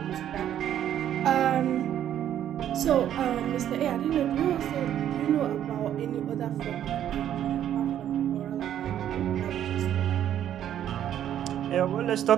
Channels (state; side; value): quieter; left; 10.7 dB